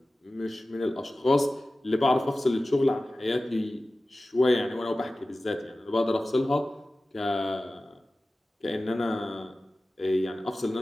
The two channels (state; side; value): normal; both; correlation 0.96